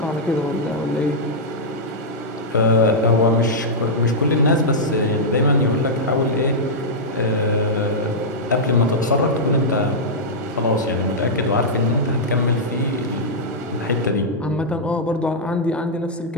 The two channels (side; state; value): both; normal; correlation -0.08